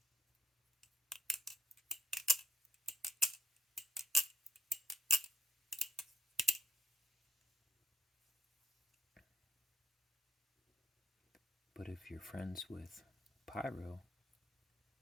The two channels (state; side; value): normal; both; correlation 0.68